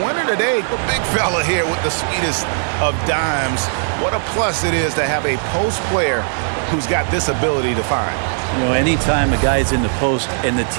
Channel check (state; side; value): silent; left; digital silence